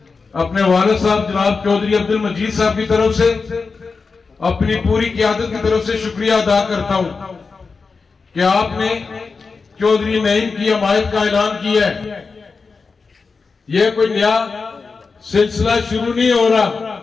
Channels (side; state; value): right; quieter; 4.6 dB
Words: अपने वालिद साहब जनाब चौधरी अब्दुल मजीद साहब की तरफ से, अपनी पूरी क़यादत की तरफ से शुक्रिया अदा करता हूं कि आपने चौधरी नईम की हमायत का ऐलान किया है। यह कोई नया सिलसिला शुरू नहीं हो रहा।